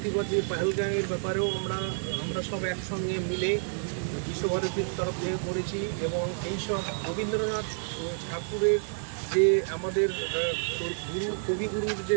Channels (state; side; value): silent; left; digital silence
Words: পহেলগাঁওয়ের ব্যাপারেও আমরা সব একসঙ্গে মিলে বিশ্বভারতীর তরফ থেকে করেছি এবং এইসব রবীন্দ্রনাথ ঠাকুরের যে আমাদের কবিগুরুর